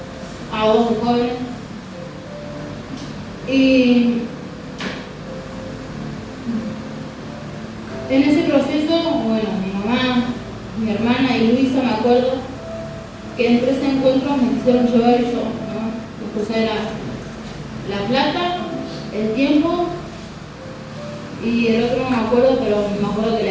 a 2 jóvenes y en ese proceso, bueno, mi mamá, mi hermana y Luisa, me acuerdo que en 3 encuentros me quisieron llevar y yo, ¿no? Me puse la plata, el tiempo y el otro no me acuerdo, pero me acuerdo que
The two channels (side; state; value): both; identical; correlation 1.00